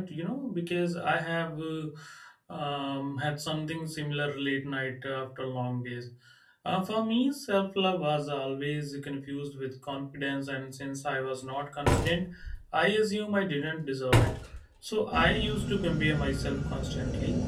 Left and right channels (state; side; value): identical; both; correlation 1.00